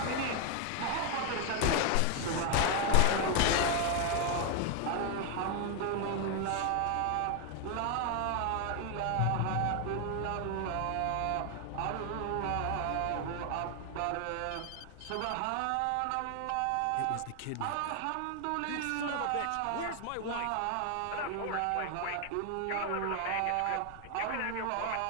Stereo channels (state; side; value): different; both; correlation 0.00